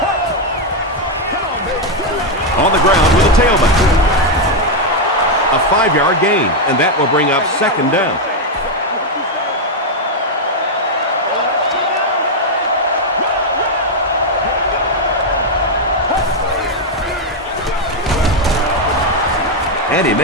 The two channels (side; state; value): both; normal; correlation 0.02